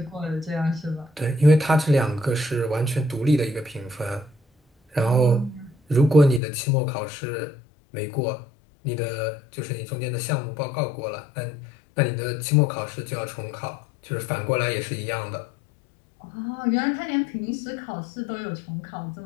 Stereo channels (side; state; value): right; drops out; at 6.4 s